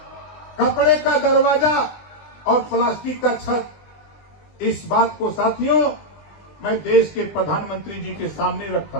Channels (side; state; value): right; late; 20 ms